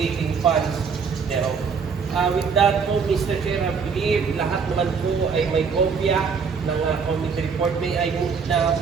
funds thereof. With that po, Mr. Chair, I believe lahat naman po ay may kopya ng committee report. May I move na,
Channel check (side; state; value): left; quieter; 5.8 dB